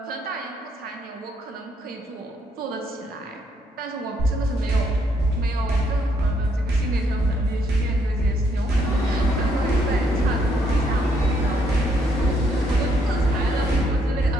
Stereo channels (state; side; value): normal; both; correlation 0.72